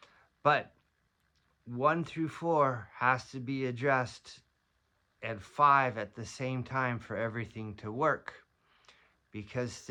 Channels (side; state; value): both; identical; correlation 1.00